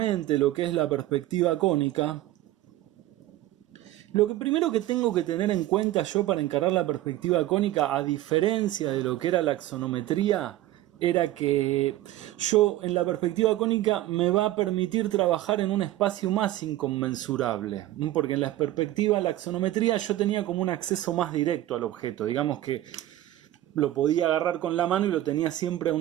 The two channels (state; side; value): quieter; left; 14.9 dB